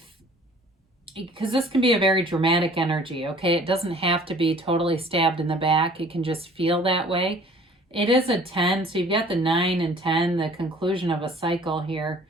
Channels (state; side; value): normal; both; correlation 0.51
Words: because this can be a very dramatic energy, okay? It doesn't have to be totally stabbed in the back. It can just feel that way. It is a 10, so you've got the 9 and 10, the conclusion of a cycle here